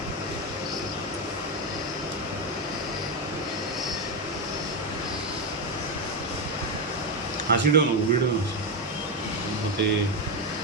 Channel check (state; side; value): normal; both; correlation 0.09